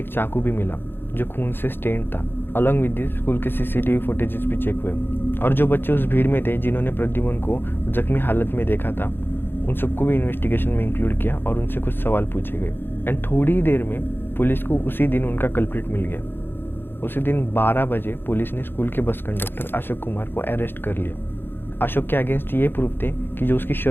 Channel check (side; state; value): right; late; 0.10 ms